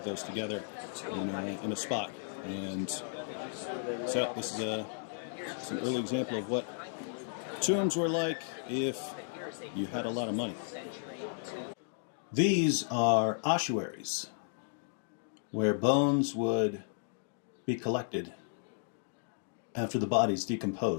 those together in a spot. And so this is an early example of what tombs were like if you had a lot of money. These are ossuaries, where bones would be collected after the body's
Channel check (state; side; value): silent; right; digital silence